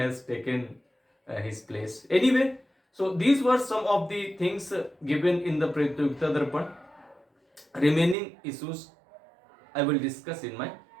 taken his place. Anyway, so these were some of the things given in the Pratiyogita Darpan. Remaining issues I will discuss in my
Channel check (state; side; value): drops out; left; at 8.2 s